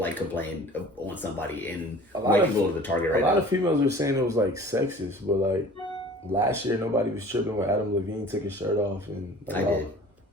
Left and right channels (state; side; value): normal; both; correlation 0.45